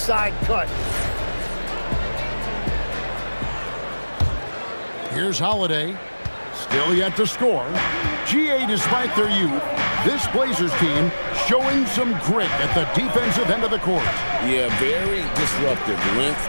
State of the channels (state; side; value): inverted; both; correlation -1.00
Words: cut. Here's Holiday. Still yet to score. GA, despite their youth, this Blazers team showing some grit at the defensive end of the court. Yeah, very disruptive. Length